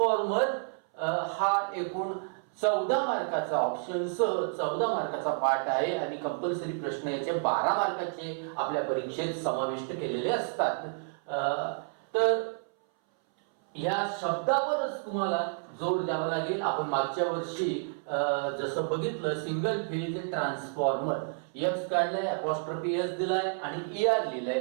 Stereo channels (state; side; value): silent; left; 58 dB below the other